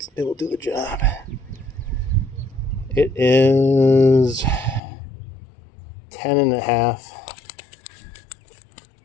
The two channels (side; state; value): right; drops out; at 4.8 s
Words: will do the job. It is